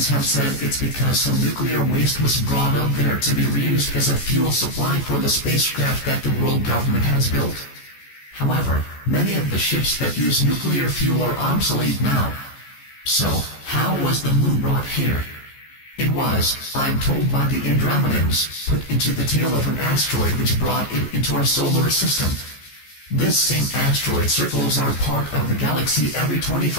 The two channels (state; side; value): late; right; 14 ms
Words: have said it's because some nuclear waste was brought up there to be reused as a fuel supply for the spacecraft that the world government has built. However, many of the ships that use nuclear fuel are obsolete now. So, how was the moon brought here? It was, I'm told by the Andromedans, put into the tail of an asteroid which brought it into our solar system. This same asteroid circles our part of the galaxy every